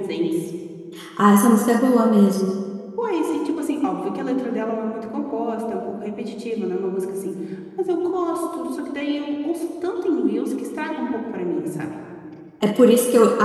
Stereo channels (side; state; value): both; identical; correlation 1.00